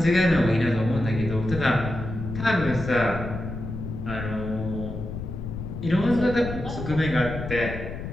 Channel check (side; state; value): left; noise; rumble, 7 dB below the sound